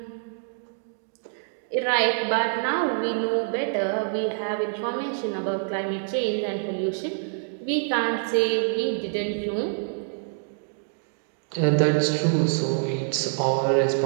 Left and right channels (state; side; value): silent; left; digital silence